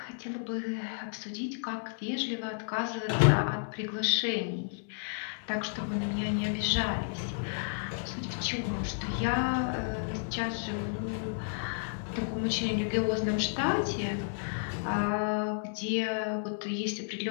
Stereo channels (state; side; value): silent; right; 56 dB below the other